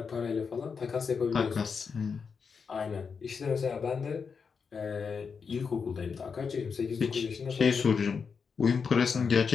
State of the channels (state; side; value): quieter; right; 5.7 dB